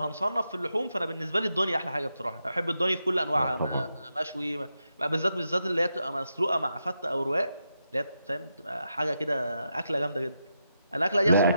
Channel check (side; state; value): both; inverted; correlation -0.85